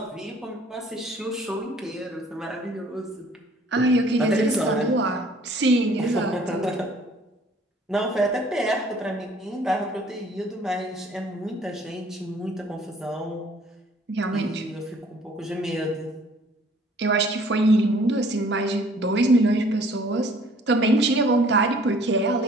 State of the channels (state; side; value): normal; both; correlation 0.56